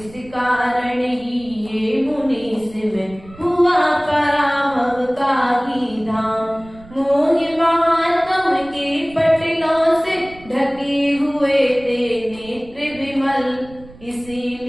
कारण ही ये मुनीस में हुआ पराभव का ही धाम। मोहि महात्म के पटलों से ढके हुए थे नेत्र विमल,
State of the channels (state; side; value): noise; right; rumble, 21 dB below the sound